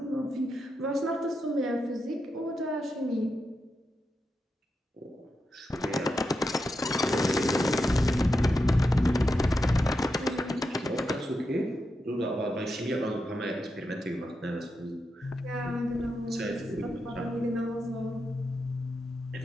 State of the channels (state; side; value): normal; both; correlation 0.86